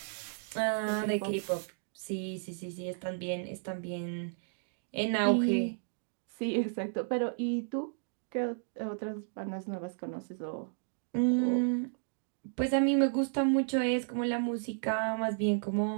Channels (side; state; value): left; silent; digital silence